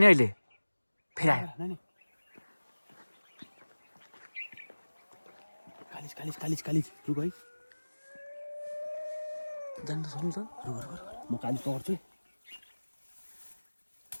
नि अहिले। फेरि आयो नानी कालिज रुक है जानु त सक्नु त म कालिज पकड्छु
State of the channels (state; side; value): inverted; both; correlation -1.00